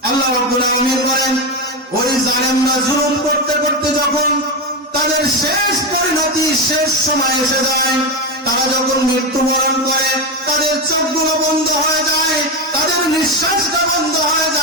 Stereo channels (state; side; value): normal; both; correlation 0.13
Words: আল্লাহ রাব্বুল আলামিন বলেন, ওই জালেমরা জুলুম করতে করতে যখন তাদের শেষ পরিণতি, শেষ সময় এসে যায়, তারা যখন মৃত্যুবরণ করে, তাদের চোখগুলো বন্ধ হয়ে যায়, তাদের নিঃশ্বাসটা বন্ধ হয়ে